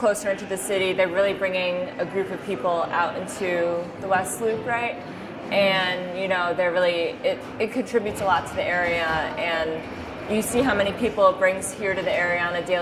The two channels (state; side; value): identical; both; correlation 1.00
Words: into the city, they're really bringing a group of people out into the West Loop, right? And, they're really, it contributes a lot to the area, and you see how many people it brings here to the area on a